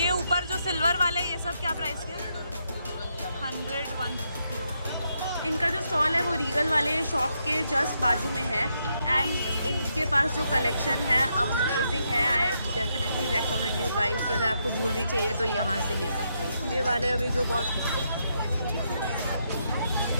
ऊपर जो सिल्वर वाले ये सब क्या प्राइस के? 100 150। इनका जो स्टॉल है वो रीगल वाले शॉप के जस्ट बाजू में है एंड इनके पास जो कलेक्शन है अमेजिंग है। I definitely recommend you guys कि अगर आपको ज्वेलरी चाहिए तो यहाँ से ले सकते हो। ये वाले अभी जो बहुत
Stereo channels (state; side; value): inverted; both; correlation -0.79